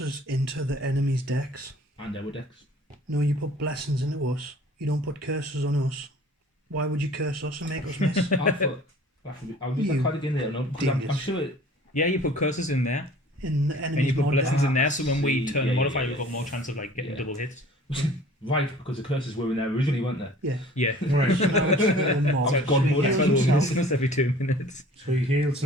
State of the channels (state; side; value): normal; both; correlation 0.49